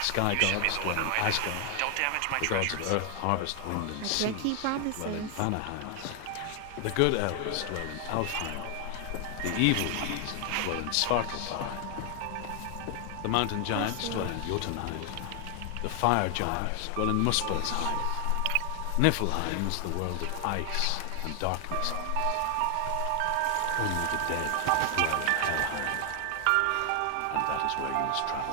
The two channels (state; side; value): different; both; correlation 0.00